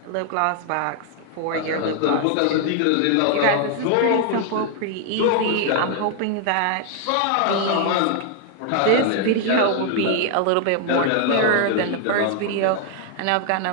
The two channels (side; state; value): both; different; correlation 0.00